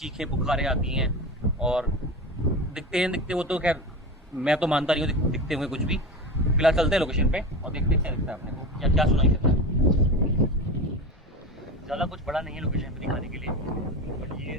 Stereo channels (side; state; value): both; normal; correlation 0.26